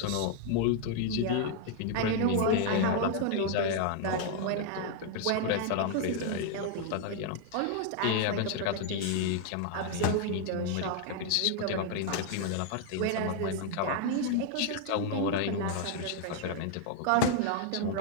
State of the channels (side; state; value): both; different; correlation 0.00